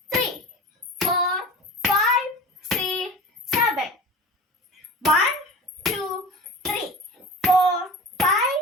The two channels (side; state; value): both; normal; correlation 0.35